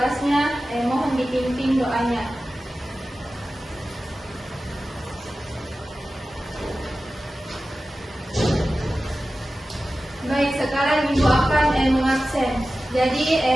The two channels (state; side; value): normal; both; correlation 0.95